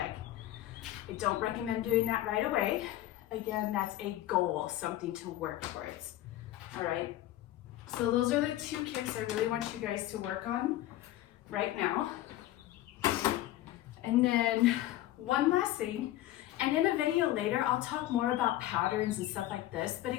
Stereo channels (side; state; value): right; quieter; 14.5 dB